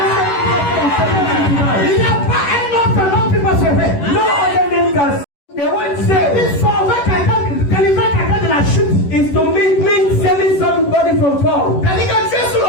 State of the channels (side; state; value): right; late; 11 ms